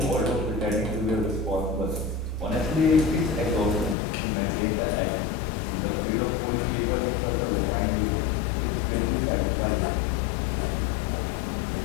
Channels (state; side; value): drops out; right; at 4.0 s